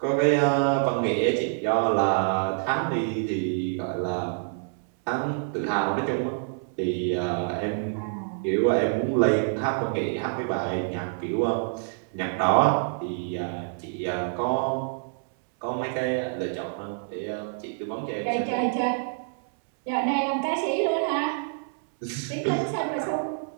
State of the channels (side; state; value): left; silent; 60 dB below the other